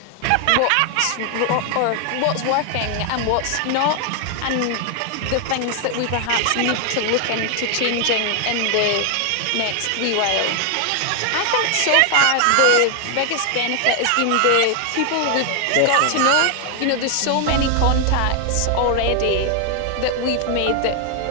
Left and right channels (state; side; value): different; both; correlation 0.00